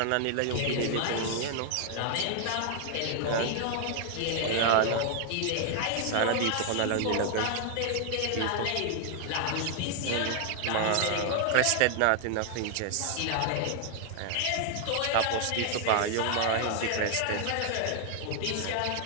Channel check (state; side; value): different; both; correlation 0.00